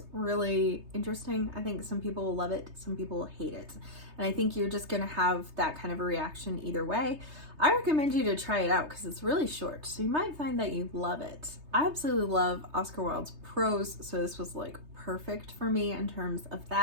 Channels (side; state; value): left; late; 3.2 ms